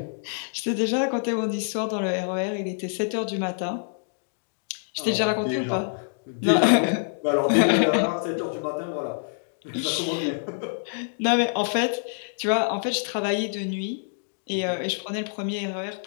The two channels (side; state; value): right; silent; digital silence